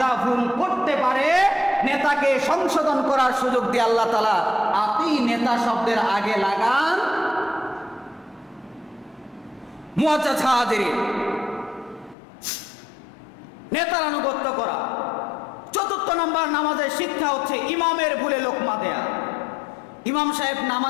ভুল করতে পারে, নেতাকে সংশোধন করার সুযোগ দিয়ে আল্লাহ তাআলা আতি নেতা শব্দের আগে লাগান। মুআজ্জাজ হাজিরিন, নেতার আনুগত্য করা। 4 নম্বর নামাজের শিক্ষা হচ্ছে ইমামের ভুলে লোকমা দেয়া। ইমাম সাহেব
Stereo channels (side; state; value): right; drops out; at 12.2 s